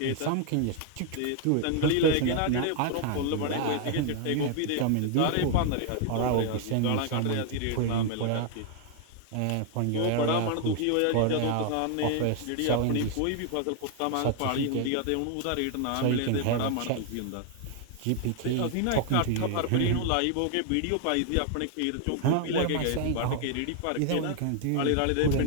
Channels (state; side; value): different; both; correlation 0.00